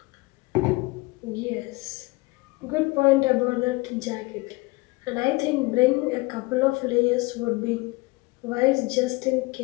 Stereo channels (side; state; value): right; quieter; 24.1 dB